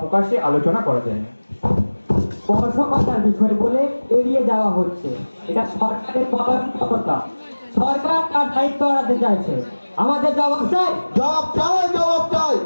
প্রকাশ্যে আলোচনা করা যায় না। স্পর্শকতার বিষয় বলে এড়িয়ে যাওয়া হচ্ছে, এটা সরকারের পরামর্শকতা। সরকার তার দায়িত্ব এড়াতে চাইছে। আমাদের জবাব চাই, জবাব চাই, জবাব চাই।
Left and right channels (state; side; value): inverted; both; correlation -1.00